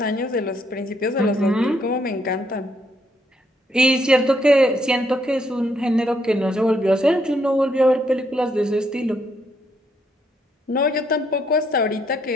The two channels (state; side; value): normal; both; correlation 0.73